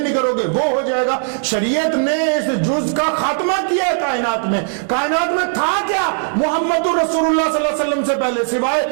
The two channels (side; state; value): left; silent; digital silence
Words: کرو گے وہ ہو جائے گا۔ شریعت نے اس جز کا خاتمہ کیا ہے کائنات میں۔ کائنات میں تھا کیا محمد رسول اللہ صلی اللہ علیہ وسلم سے پہلے